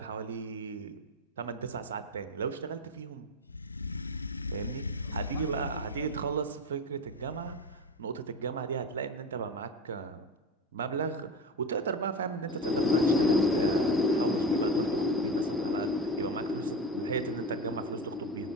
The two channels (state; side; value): normal; both; correlation 0.25